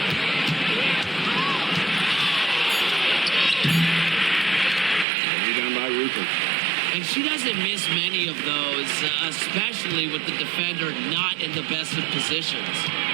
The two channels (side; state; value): left; drops out; at 5.1 s